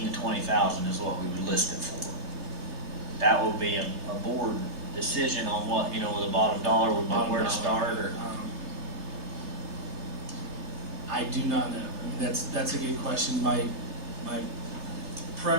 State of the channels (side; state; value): left; late; 3.2 ms